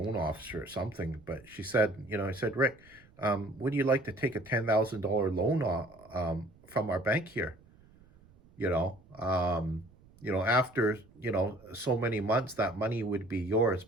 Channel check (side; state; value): right; noise; rumble, 27 dB below the sound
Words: officer or something. But she said, I said, Rick, would you like to take a $10,000 loan from our bank here? You know, um, after so many months, that money would be yours,